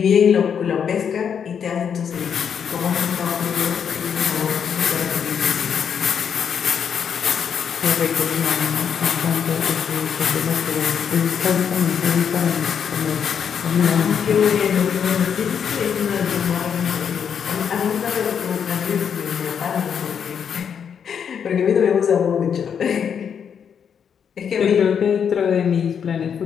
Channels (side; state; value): right; quieter; 7.6 dB